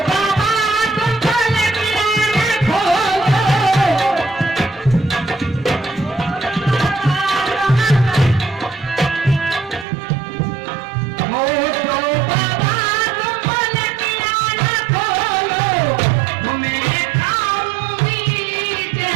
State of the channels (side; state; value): left; drops out; at 9.9 s